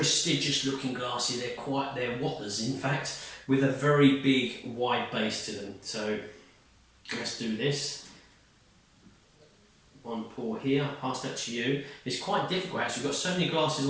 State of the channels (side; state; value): both; identical; correlation 1.00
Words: looking glasses. They're whoppers in fact, with a very big wide base to them. So let's do this. One pour here, I'll pass that to you. It's quite difficult actually, we've got so many glasses